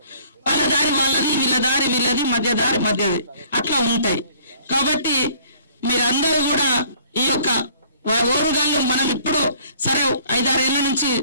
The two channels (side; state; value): both; inverted; correlation -0.56